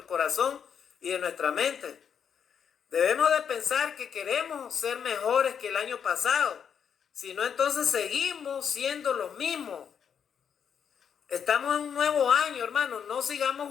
corazón y de nuestra mente. Debemos de pensar que queremos ser mejores que el año pasado. Si no, entonces seguimos siendo los mismos. Estamos en un nuevo año, hermano. No sigamos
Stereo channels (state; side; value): quieter; right; 7.6 dB